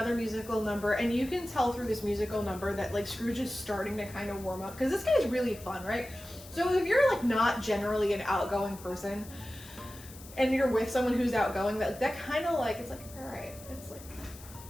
musical number, and you can tell through this musical number that like Scrooge is starting to kind of warm up, because this guy's really fun, right? So if you're like not generally an outgoing person and you're with someone who's outgoing, that kind of like, it's like, all right, it's like,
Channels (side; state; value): left; noise; hiss, 18 dB below the sound